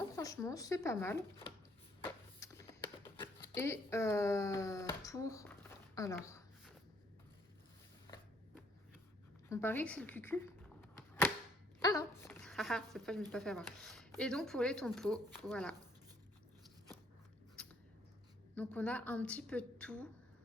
franchement, c'est pas mal. Et pour... Alors... On parie que c'est le cucu. Ah non. Cette fois, je ne me suis pas fait avoir. Et donc, pour les tompos, voilà. Donc, on a un petit peu de tout.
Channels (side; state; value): both; normal; correlation 0.66